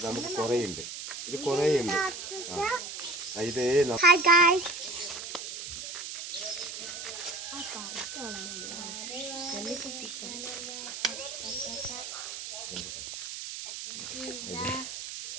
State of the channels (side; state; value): right; noise; hiss, 7 dB below the sound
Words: നമുക്ക് കുറേയുണ്ട്. ഇത് കുറേയുണ്ട്. ഇത്